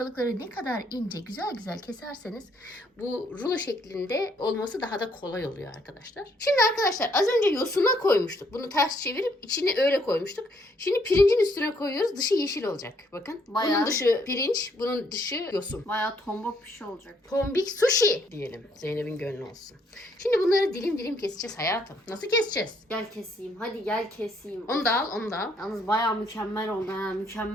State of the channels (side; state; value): both; normal; correlation 0.69